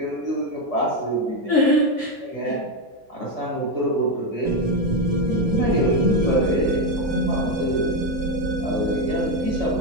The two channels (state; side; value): normal; both; correlation 0.08